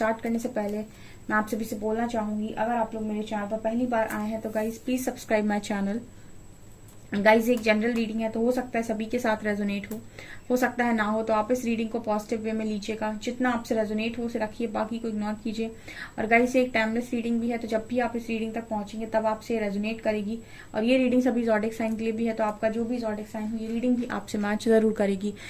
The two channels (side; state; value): both; identical; correlation 1.00